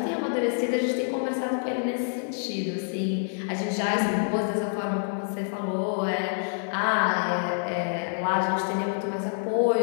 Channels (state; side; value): silent; right; 60 dB below the other